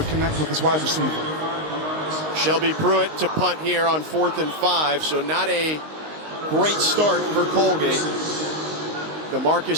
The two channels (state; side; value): late; left; 19 ms